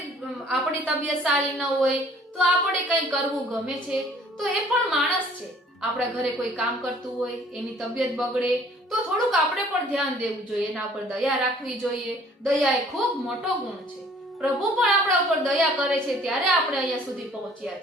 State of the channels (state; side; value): normal; both; correlation 0.55